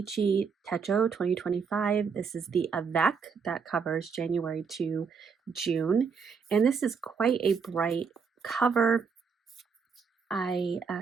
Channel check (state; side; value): quieter; left; 5.8 dB